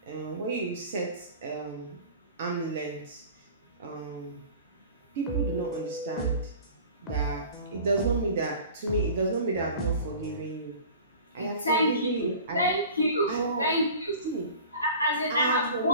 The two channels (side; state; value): both; inverted; correlation -0.41